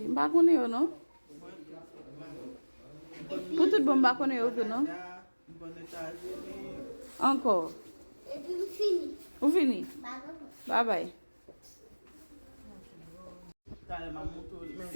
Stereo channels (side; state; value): both; inverted; correlation -1.00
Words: mbaa ko ne yo no? Pour tout bon mbaa ko ne yo que non? Encore. Et puis, fini. Vous fini? Bago. Bye bye.